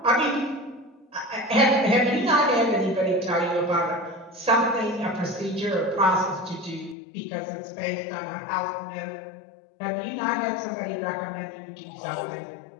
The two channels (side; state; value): right; drops out; at 7.0 s